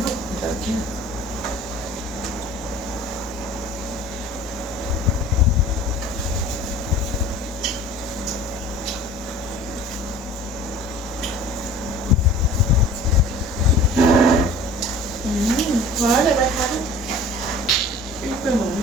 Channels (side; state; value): both; normal; correlation 0.45